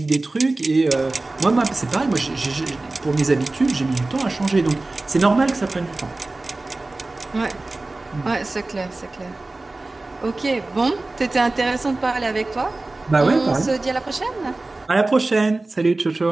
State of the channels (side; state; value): left; quieter; 3.1 dB